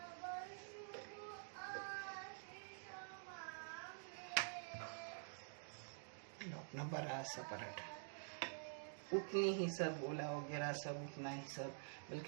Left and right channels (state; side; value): silent; left; digital silence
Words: अपना बड़ा सा पराठा, उतनी ही सब गोला वगैरह सब उतना ही सब,